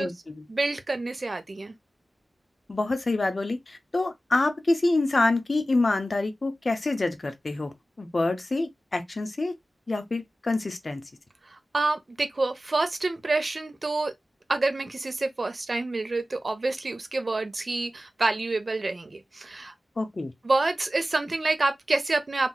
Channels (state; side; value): normal; both; correlation 0.95